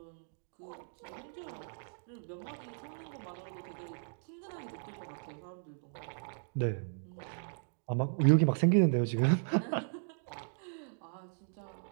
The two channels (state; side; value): silent; left; digital silence